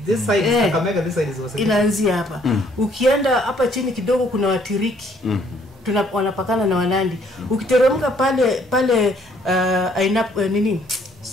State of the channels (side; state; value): both; normal; correlation 0.64